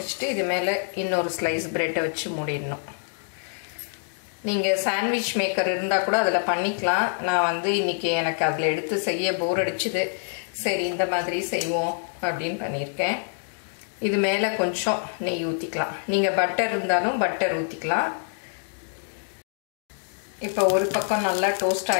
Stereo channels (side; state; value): right; silent; digital silence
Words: இது மேலே இன்னொரு ஸ்லைஸ் ப்ரெட்டை வச்சு மூடிடணும். நீங்கள் சாண்ட்விச் மேக்கர் இருந்தால் கூட அதில் பண்ணிக்கலாம். நான் வந்து இன்றைக்கி எனக்கு அதில் எடுத்து செய்ய போர் அடிச்சுது. சரி இந்த மாதிரி செய்வோம் அப்படின்னு பண்ணியிருக்கேன். இது மேலே கொஞ்சம் நெய் ஊற்றிக்கலாம். நீங்கள் பட்டர் இருந்தாலும் பட்டர் ஊற்றிக்கலாம். இப்போ ஒரு பக்கம் நல்லா டோஸ்ட்